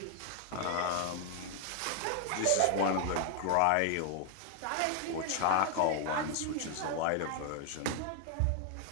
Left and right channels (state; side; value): different; both; correlation 0.00